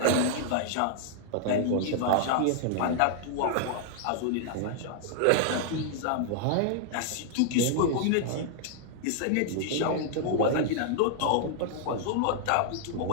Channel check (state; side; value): different; both; correlation -0.01